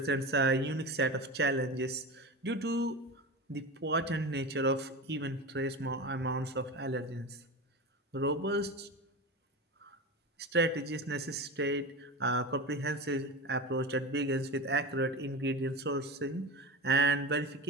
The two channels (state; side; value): normal; both; correlation 0.26